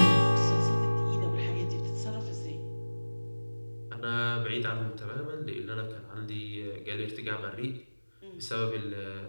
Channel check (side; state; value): both; inverted; correlation -1.00